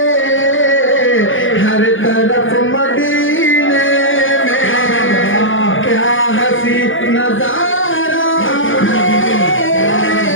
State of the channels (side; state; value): right; late; 0.57 ms